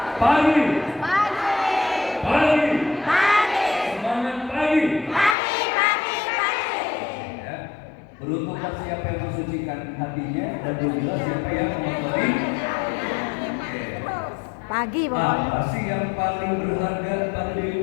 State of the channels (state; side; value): drops out; right; at 5.4 s